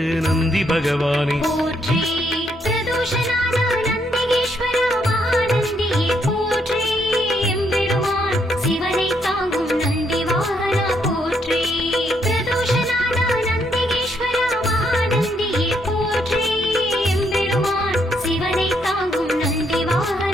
நந்தி பகவானே போற்றி பிரதோஷநாத நந்திகேஸ்வரா மகாநந்தியே போற்றி எம்பெருமான் சிவனை தாங்கும் நந்தி வாகனா போற்றி பிரதோஷநாத நந்திகேஸ்வரா மகாநந்தியே போற்றி எம்பெருமான் சிவனை தாங்கும் நந்தி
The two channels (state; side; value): normal; both; correlation 0.74